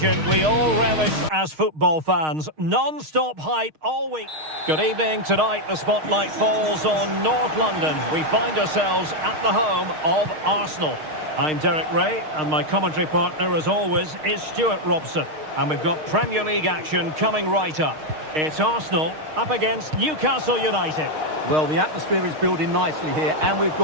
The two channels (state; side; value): late; left; 6.5 ms